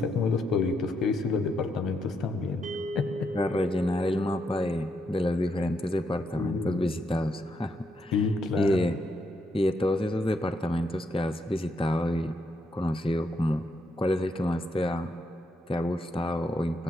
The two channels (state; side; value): normal; both; correlation 0.79